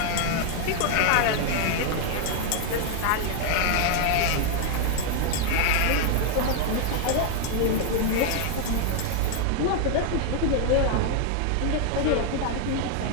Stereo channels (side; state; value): both; different; correlation 0.00